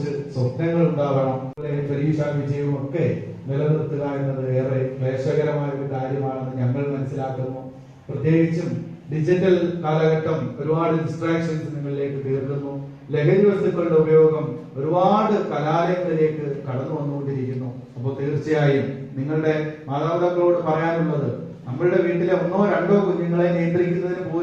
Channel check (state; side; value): identical; both; correlation 1.00